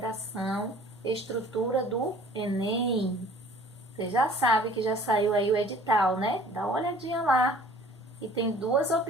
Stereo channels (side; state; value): both; normal; correlation 0.51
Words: estrutura do Enem. Você já sabe que já saiu aí o edital, né? Dá uma olhadinha lá. E tem duas